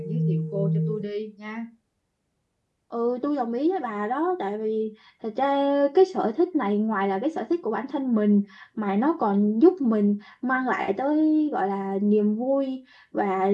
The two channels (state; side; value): identical; both; correlation 1.00